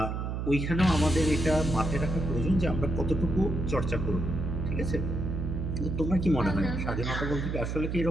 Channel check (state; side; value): noise; right; hum, 3 dB below the sound